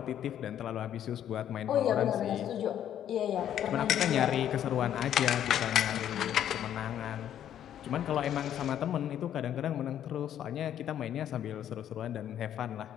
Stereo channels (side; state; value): right; quieter; 10.5 dB